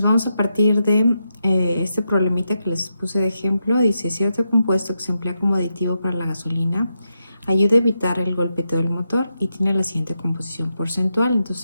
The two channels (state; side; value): inverted; both; correlation -0.85